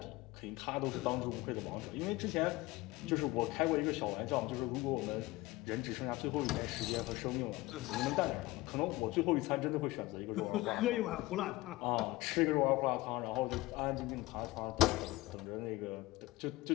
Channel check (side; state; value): right; quieter; 19.9 dB